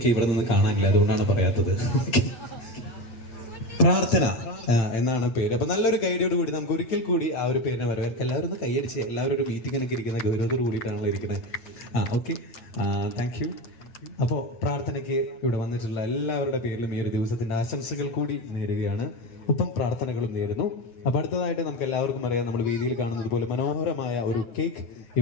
ഇവിടെ നിന്ന് കാണാനില്ല, അതുകൊണ്ടാണ് പറയാത്തത്. പ്രാർത്ഥന എന്നാണ് പേര്. അപ്പൊ നല്ലൊരു ഗൈഡിയോട് കൂടി നമുക്ക് ഒരിക്കൽ കൂടി ആ ഒരു പേരിനെ വരവേൽക്കാം. എല്ലാവരും ഒന്ന് കൈയടിച്ച്, എല്ലാവരും ഒരു മീറ്റിങ്ങിനൊക്കെ ഇരിക്കുന്ന ഗൗരവത്തോട് കൂടിയിട്ടാണല്ലോ ഇരിക്കുന്നത്. Okay, thank you. അപ്പോൾ പ്രാർത്ഥനയ്ക്ക് ഇവിടെ വന്നിട്ടുള്ള എല്ലാവരുടെ പേരിലും ഈ ഒരു ദിവസത്തിന്റെ ആശംസകൾ കൂടി നേരുകയാണ്, ഒപ്പം പ്രാർത്ഥനകളും നേരുന്നു. അപ്പൊ അടുത്തതായിട്ട് നമുക്ക് എല്ലാവർക്കും അറിയാം, നമ്മൾ വേദിയിൽ കാണുന്നത് പോലെ മനോഹരമായ ഒരു കേക്ക്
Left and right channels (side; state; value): right; late; 8.9 ms